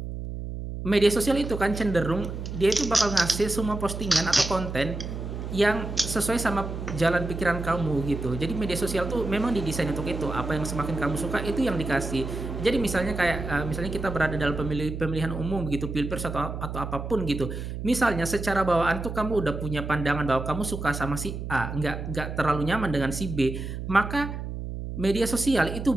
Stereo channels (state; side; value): noise; right; hum, 6 dB below the sound